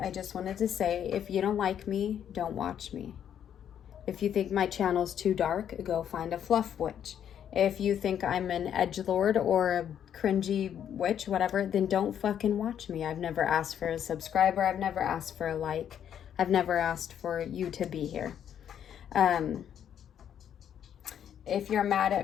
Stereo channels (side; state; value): right; quieter; 9.3 dB